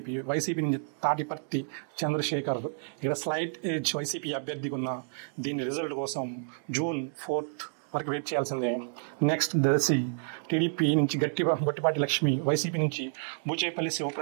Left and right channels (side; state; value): left; silent; digital silence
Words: వైసీపీ నుంచి తాటిపర్తి చంద్రశేఖర్. ఇక్కడ స్లైట్ ఎడ్జ్ వైసీపీ అభ్యర్థికి ఉన్న దీని రిజల్ట్ కోసం జూన్ 4th వరకు వెయిట్ చేయాల్సిందే. నెక్స్ట్ దర్శి టీడీపీ నుంచి గొట్టిపాటి లక్ష్మి, వైసీపీ నుంచి బూచేపల్లి